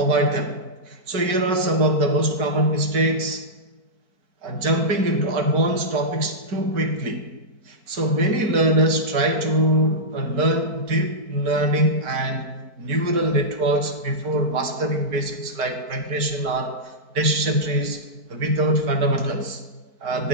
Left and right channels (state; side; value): late; left; 4.5 ms